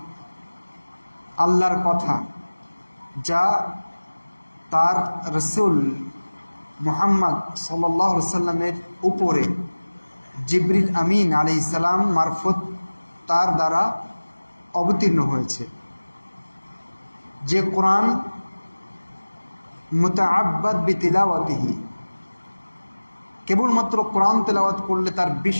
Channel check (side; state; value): both; inverted; correlation -1.00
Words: আল্লাহর কথা, যা তার রসুল মুহাম্মদ সাল্লাল্লাহু আলাইহি সাল্লামের উপরে জিবরিল আমিন আলাইহিস সালাম মারফত তার দ্বারা অবতীর্ণ হয়েছে। যে কোরআন মুতাআব্বাদ বিতিলাওয়াতিহি, কেবলমাত্র কোরআন তেলাওয়াত করলে তার